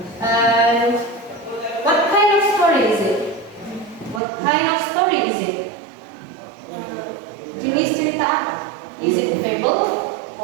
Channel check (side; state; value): left; drops out; at 4.2 s